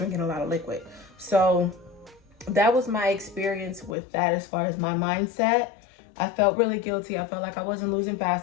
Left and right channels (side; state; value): right; drops out; at 4.0 s